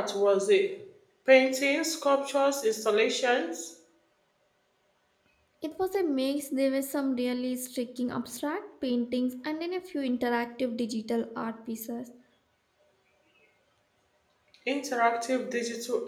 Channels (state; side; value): identical; both; correlation 1.00